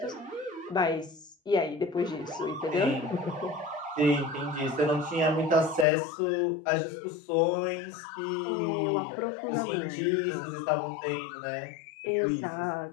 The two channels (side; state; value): right; drops out; at 5.9 s